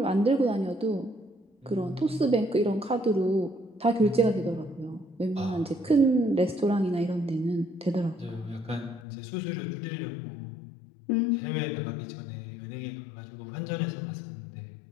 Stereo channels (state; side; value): drops out; right; at 9.1 s